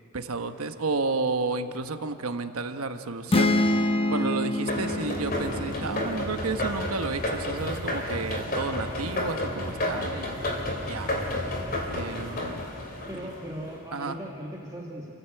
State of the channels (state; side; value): normal; both; correlation 0.22